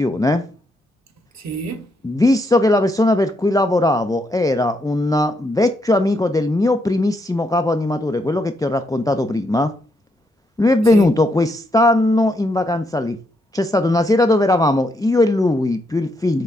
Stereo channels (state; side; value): normal; both; correlation 0.78